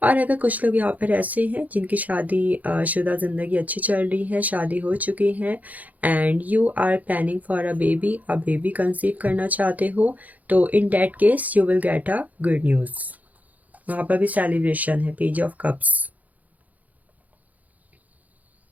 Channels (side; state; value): left; late; 0.078 ms